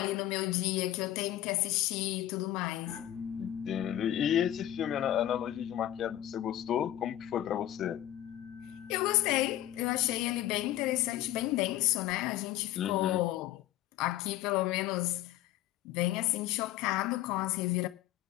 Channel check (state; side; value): quieter; right; 13.4 dB